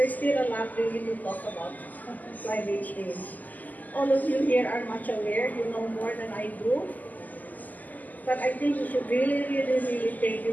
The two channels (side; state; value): right; late; 0.081 ms